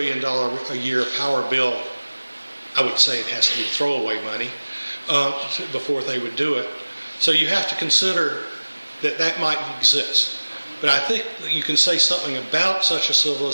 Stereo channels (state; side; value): inverted; both; correlation -1.00